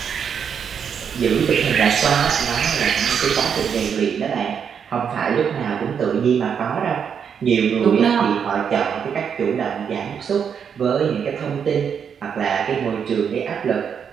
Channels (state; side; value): quieter; left; 7.3 dB